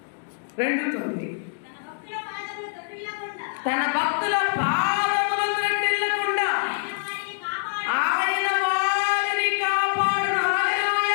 2:9. తన భక్తుల పాదములు త్రొట్టిల్లకుండా ఆయన వారిని కాపాడును.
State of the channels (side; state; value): right; silent; digital silence